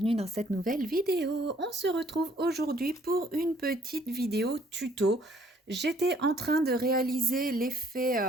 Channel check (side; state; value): both; normal; correlation 0.62